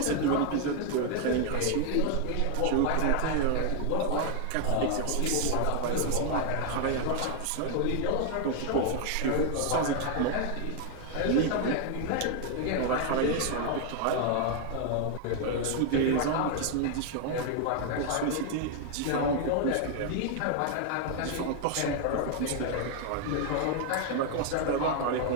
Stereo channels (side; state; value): both; different; correlation 0.00